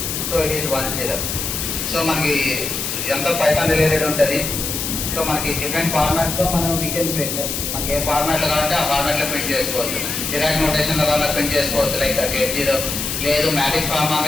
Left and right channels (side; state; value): left; noise; hiss, 3 dB below the sound